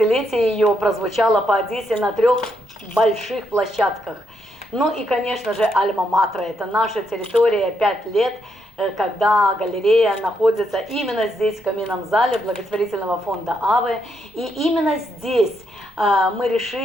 ее прозвучало по Одессе на 3 больших площадках. Ну и, конечно же, Альма-Матра – это наша территория, 5 лет, когда галерея находится именно здесь, в каминном зале благотворительного фонда АВЭ. И именно здесь мы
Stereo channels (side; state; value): both; normal; correlation 0.78